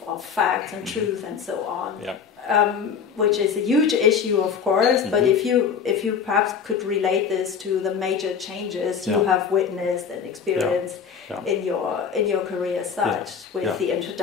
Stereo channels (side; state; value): right; quieter; 6.7 dB